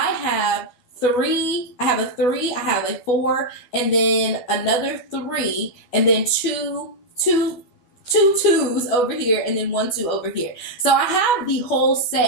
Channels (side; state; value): right; late; 12 ms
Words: have a 3, I have a 4, and then another 3, and then two 2s over here, and then 1 2 over here. So I have the whole